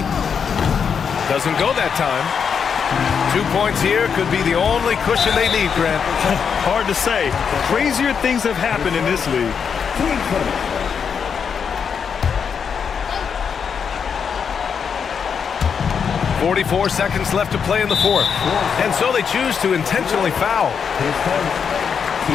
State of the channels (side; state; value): right; quieter; 6.7 dB